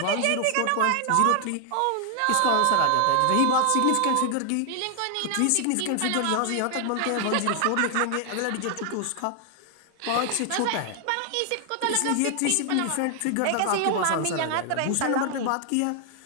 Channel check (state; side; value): different; both; correlation 0.00